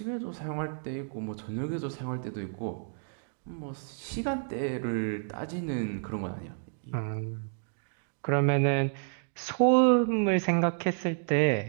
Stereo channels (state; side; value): silent; left; digital silence